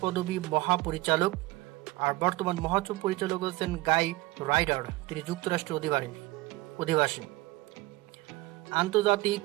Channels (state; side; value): quieter; left; 20.1 dB